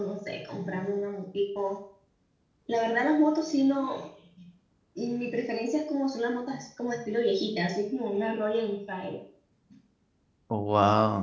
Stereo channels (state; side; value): identical; both; correlation 1.00